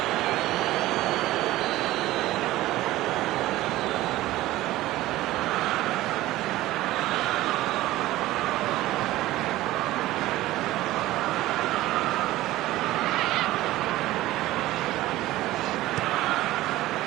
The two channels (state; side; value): quieter; left; 16.5 dB